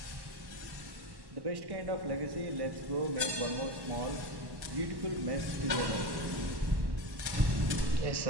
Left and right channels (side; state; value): left; late; 1.1 ms